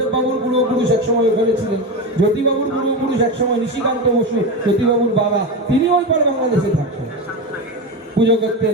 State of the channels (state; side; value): normal; both; correlation 0.19